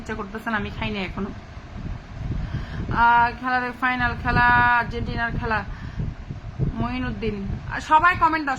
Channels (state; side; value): identical; both; correlation 1.00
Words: ইচ্ছা করতেছে না, আমি খাইনি এখনো। খেলার ফাইনাল খেলা, আর্জেন্টিনার খেলা। মঈনুদ্দিন। সবাই কমেন্ট দাও,